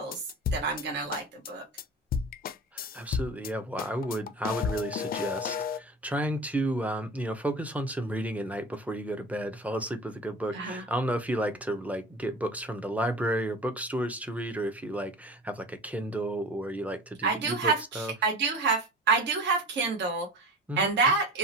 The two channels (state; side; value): normal; both; correlation 0.35